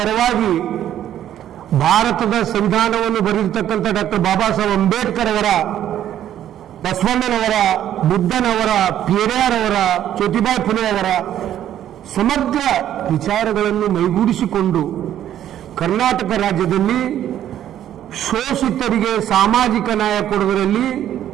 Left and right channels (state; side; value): quieter; left; 11.3 dB